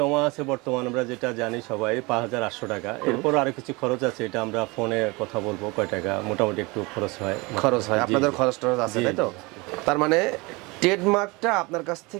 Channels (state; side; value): quieter; left; 25.4 dB